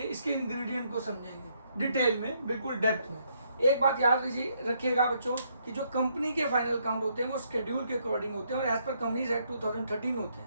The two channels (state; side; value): inverted; both; correlation -0.72